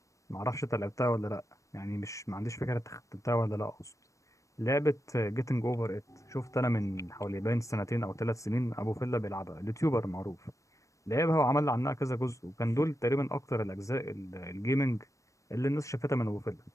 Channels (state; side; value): late; right; 0.15 ms